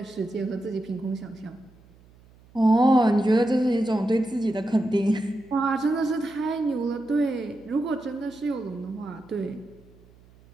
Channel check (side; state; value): right; noise; hum, 27 dB below the sound